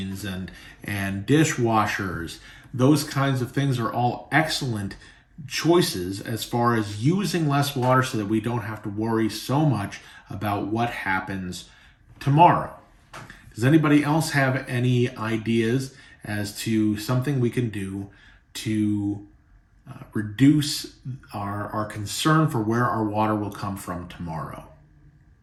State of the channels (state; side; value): identical; both; correlation 1.00